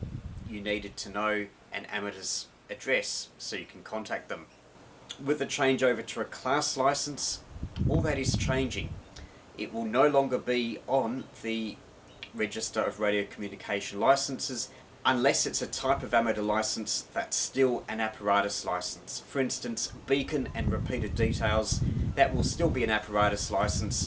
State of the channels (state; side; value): identical; both; correlation 1.00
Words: you needed to know an amateur's address so you can contact them. With the changeover to a class license, all that is changing. It will no longer be on the Register of Radio Communication Licenses unless it's a type of amateur license that's still an apparatus license. For instance, beacon and repeated details, that will still be an apparatus